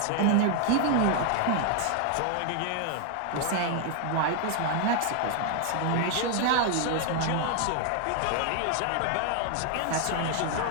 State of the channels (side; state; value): both; different; correlation 0.00